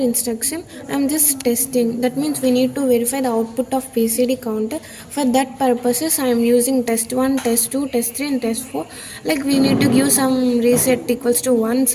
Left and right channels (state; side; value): identical; both; correlation 1.00